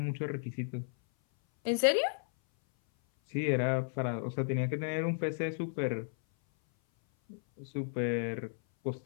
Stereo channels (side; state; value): right; silent; 55 dB below the other